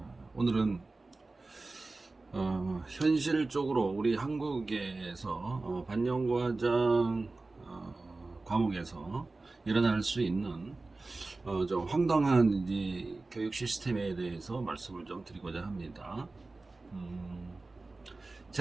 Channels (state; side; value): quieter; left; 3.4 dB